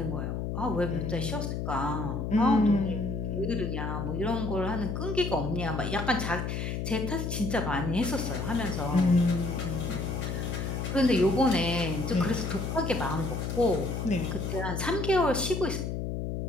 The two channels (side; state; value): left; noise; hum, 3 dB below the sound